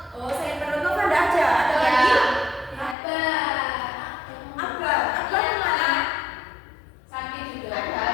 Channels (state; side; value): drops out; right; at 3.0 s